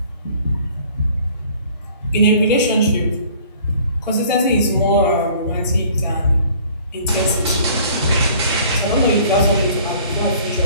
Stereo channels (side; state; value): both; inverted; correlation -0.53